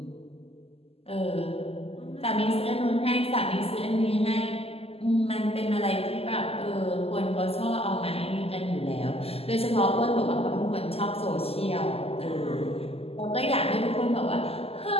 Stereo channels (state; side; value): late; right; 0.29 ms